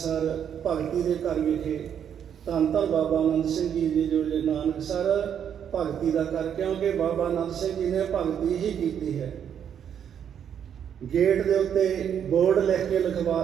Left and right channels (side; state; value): left; quieter; 8.6 dB